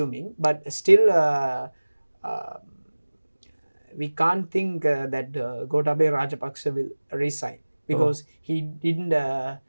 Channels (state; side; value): inverted; both; correlation -1.00